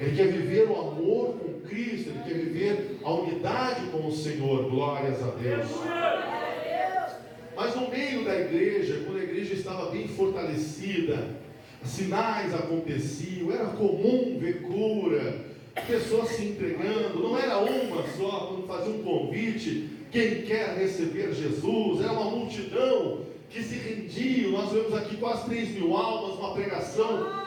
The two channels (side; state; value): both; identical; correlation 1.00